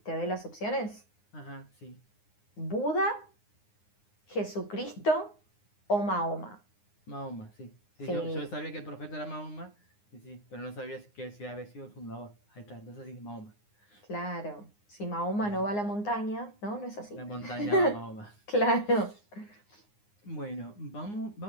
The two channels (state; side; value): late; right; 9.7 ms